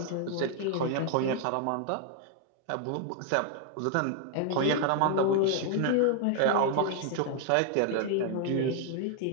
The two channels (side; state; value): both; different; correlation 0.00